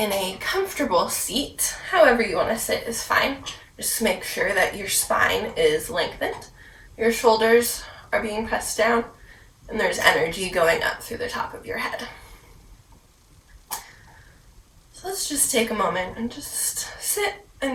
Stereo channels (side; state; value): both; identical; correlation 1.00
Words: in a comfortable seat. However you want to sit is fine. Just make sure that your spine is lengthened, your shoulders are being pressed down, and there's energy going up through the top of your head. So let's just take a moment and just sit